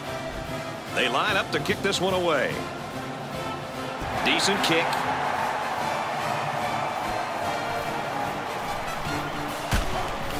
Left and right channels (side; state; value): both; identical; correlation 1.00